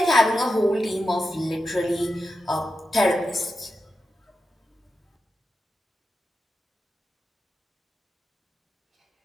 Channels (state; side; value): normal; both; correlation 0.89